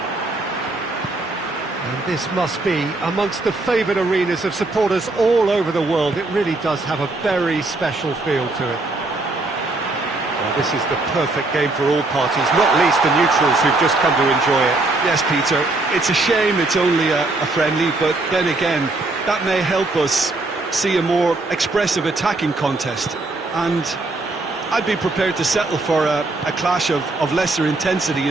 And this must be amongst the favoured arenas of supporters all over the world. It really does have a very special feel to it. Well, this is the perfect game for all parties, not least the neutrals who've just come to enjoy it. Yes, Peter, it's a shame it's only a friendly, but then again, that may help us see a more expressive attacking contest. And I'd be prepared to settle for a clash of lesser intensity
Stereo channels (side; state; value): left; quieter; 3.1 dB